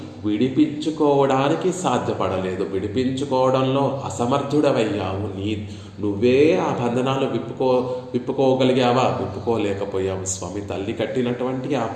విడిపించుకోవడానికి సాధ్యపడలేదు, విడిపించుకోవడంలో అసమర్థుడవయ్యావు. నువ్వే ఆ బంధనాలు విప్పుకోగలిగావా? విప్పుకోలేకపోయావు స్వామి. తల్లి కట్టినటువంటి ఆ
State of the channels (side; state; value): both; identical; correlation 1.00